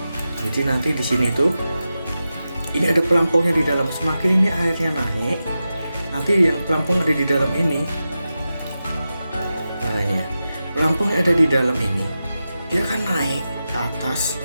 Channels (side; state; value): both; inverted; correlation -0.92